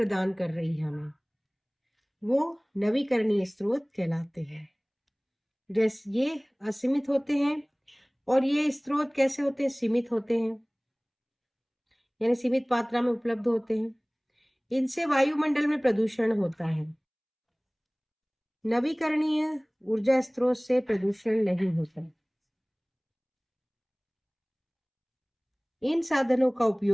कर रही है हमें, वो नवीकरणीय स्रोत कहलाते हैं। जैसे ये असीमित होते हैं, और ये स्रोत कैसे होते हैं? सीमित होते हैं, यानी सीमित मात्रा में उपलब्ध होते हैं। इनसे वायुमंडल में प्रदूषण होता है। नवीकरणीय ऊर्जा स्रोत से प्रदूषण नहीं होता। इन साधनों का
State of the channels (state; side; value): identical; both; correlation 1.00